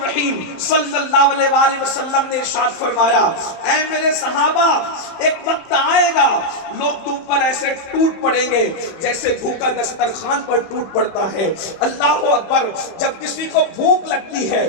صلی اللہ علیہ وآلہ وسلم نے ارشاد فرمایا، اے میرے صحابہ، ایک وقت آئے گا لوگ تم پر ایسے ٹوٹ پڑیں گے جیسے بھوکا دسترخوان پر ٹوٹ پڑتا ہے۔ اللہ اکبر! جب کسی کو بھوک لگتی ہے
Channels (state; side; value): late; right; 30 ms